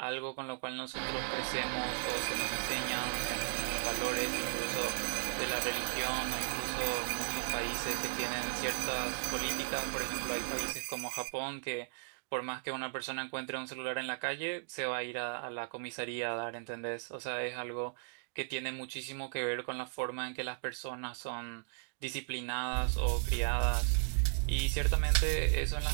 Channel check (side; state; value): left; silent; digital silence